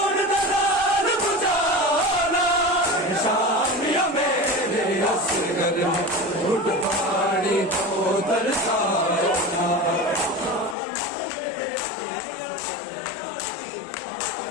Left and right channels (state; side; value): drops out; right; at 10.8 s